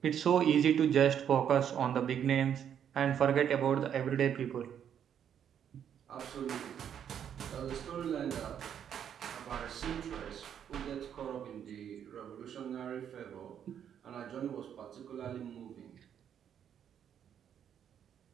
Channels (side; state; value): left; quieter; 8.9 dB